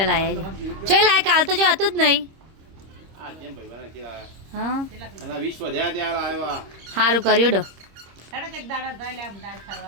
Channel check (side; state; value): left; late; 26 ms